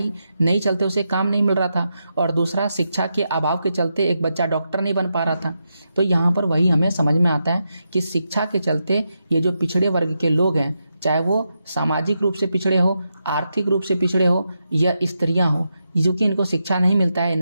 नहीं चलते उसे काम नहीं मिल रहा था, और दूसरा शिक्षा के अभाव के चलते एक बच्चा डॉक्टर नहीं बन पा रहा था। तो यहाँ पर वही हमें समझ में आता है कि शिक्षा के चलते ये जो पिछड़े वर्ग के लोग हैं, चाहे वो सामाजिक रूप से पिछड़े हो, आर्थिक रूप से पिछड़े हो या स्त्रियां हो, जो कि इनको शिक्षा नहीं मिलता है,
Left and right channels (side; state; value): both; inverted; correlation -0.86